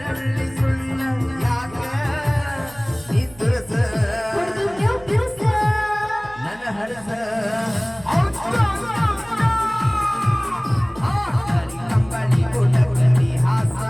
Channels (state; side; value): noise; right; hum, 23 dB below the sound